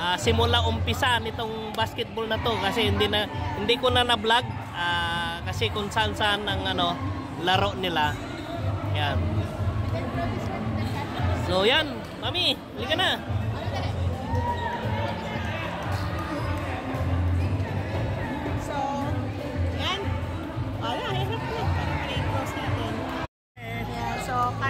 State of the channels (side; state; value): both; identical; correlation 1.00